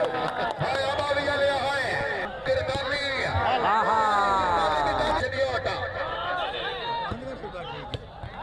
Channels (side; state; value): both; identical; correlation 1.00